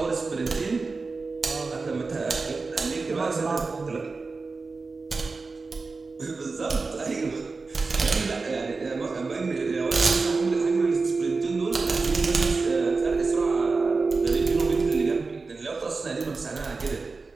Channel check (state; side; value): quieter; left; 4.1 dB